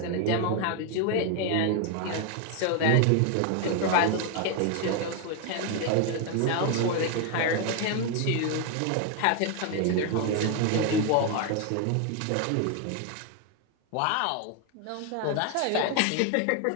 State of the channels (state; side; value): different; both; correlation 0.01